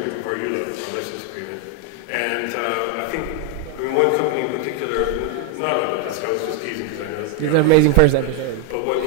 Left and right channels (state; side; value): different; both; correlation 0.01